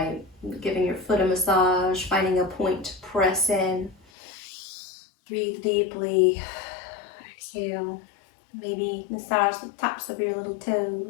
giving your foot a massage, finding a point to press in. Breathe deeply. Exhale. Maybe massage the tops of your little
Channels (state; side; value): drops out; right; at 4.0 s